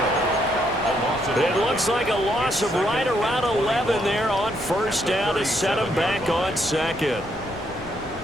It looks like a loss of right around 11 there on 1st down to set him back on 2nd.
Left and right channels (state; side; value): noise; left; rumble, 18 dB below the sound